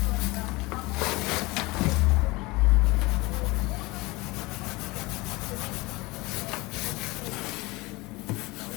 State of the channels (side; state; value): right; quieter; 23.0 dB